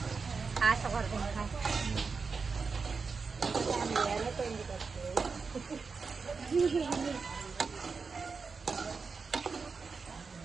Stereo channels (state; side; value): quieter; left; 4.9 dB